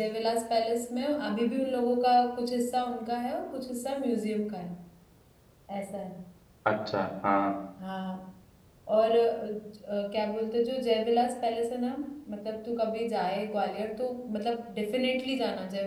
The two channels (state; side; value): identical; both; correlation 1.00